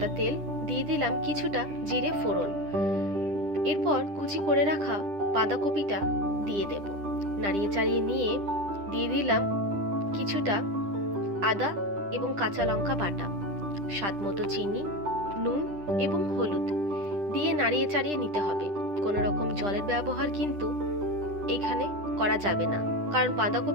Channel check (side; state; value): left; late; 10 ms